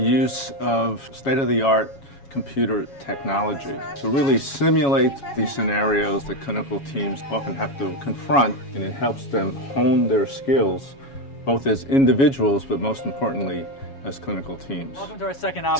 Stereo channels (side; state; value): right; late; 7.2 ms